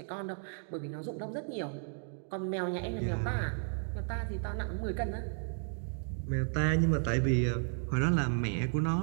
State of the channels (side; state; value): left; silent; 55 dB below the other